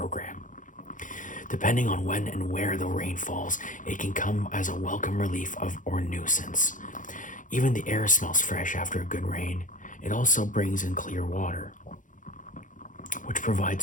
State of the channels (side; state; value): right; late; 0.38 ms